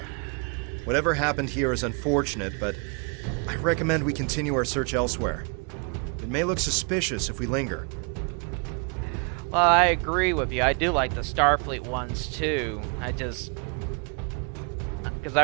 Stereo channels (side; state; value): left; quieter; 35.2 dB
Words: Whatever happened here is unfortunate, but I recommend we continue our search elsewhere. It may look suspicious if we linger. Well, I agree with you. I do like the Starfleet ones too. Because